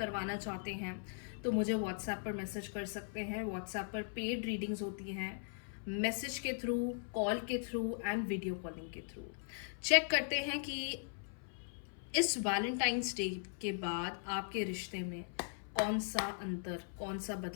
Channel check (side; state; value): right; silent; 52 dB below the other